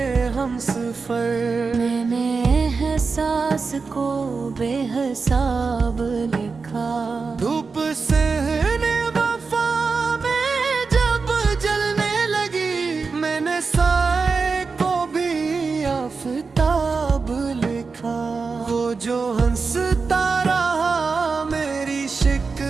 ہم سفر، میں نے احساس کو بے حساب لکھا۔ دھوپ سہنے وفا میں جب جلنے لگی، میں نے سائے کو بھی آفتاب لکھا۔ وہ جو ہنستا رہا میری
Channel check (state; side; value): quieter; left; 4.7 dB